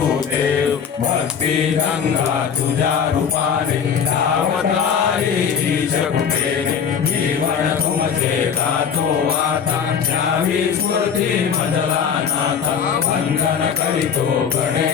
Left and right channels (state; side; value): quieter; right; 7.2 dB